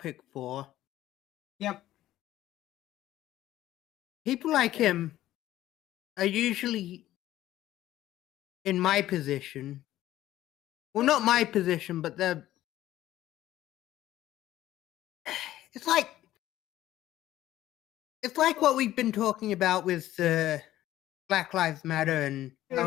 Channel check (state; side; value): quieter; right; 14.1 dB